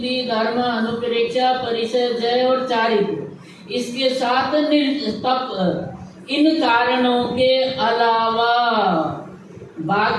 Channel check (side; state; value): both; identical; correlation 1.00